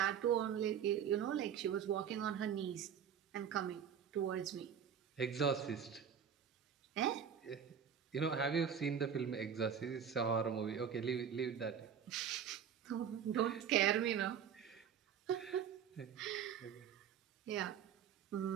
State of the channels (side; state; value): left; quieter; 8.1 dB